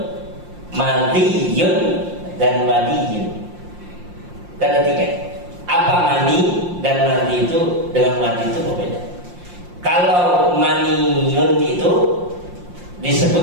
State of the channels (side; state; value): left; late; 5.7 ms